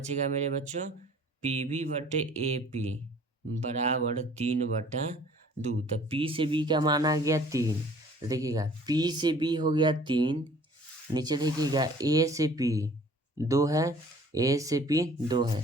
मेरे बच्चों, पी बी बटे ए पी बराबर 3/2। तो पी से बी का मान आ गया 3। तो देखिएगा पी से बी हो गया 3, नीचे देखिएगा ए से पी 2 है, ए से पी 2 है,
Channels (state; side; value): normal; both; correlation 0.52